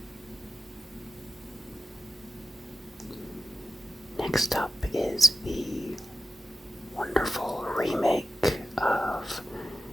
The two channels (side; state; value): both; normal; correlation 0.93